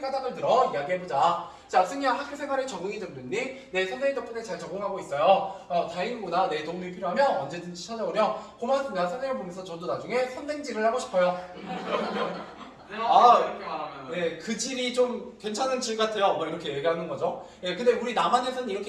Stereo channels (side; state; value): both; identical; correlation 1.00